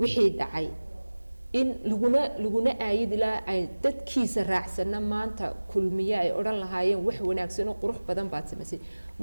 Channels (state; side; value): inverted; both; correlation -1.00